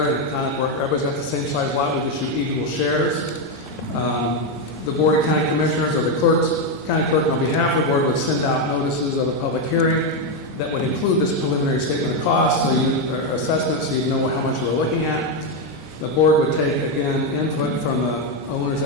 and kind of where everybody's got the same size lot, we just shoot equal shares. The Board of County Commissioners or the county clerk on behalf of the board would send out notices of a public hearing that would include this preliminary statement of costs, assessment, so you know how much you were looking at. The board would take, again, input from the owners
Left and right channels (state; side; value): normal; both; correlation 0.06